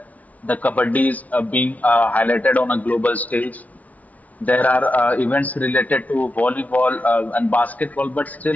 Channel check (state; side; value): late; right; 0.072 ms